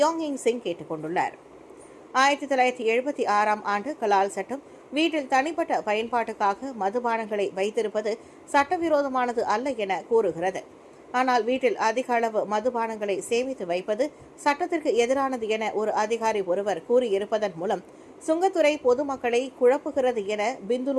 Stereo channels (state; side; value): identical; both; correlation 1.00